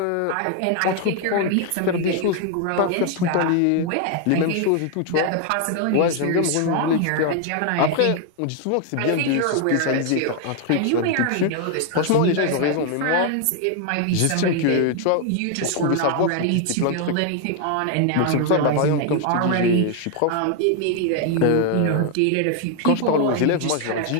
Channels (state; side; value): different; both; correlation 0.00